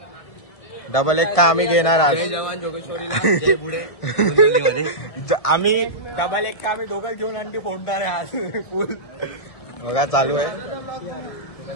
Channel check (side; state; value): right; late; 1.7 ms